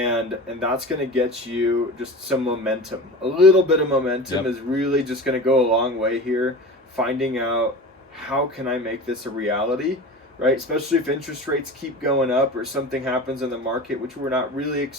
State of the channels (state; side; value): normal; both; correlation 0.33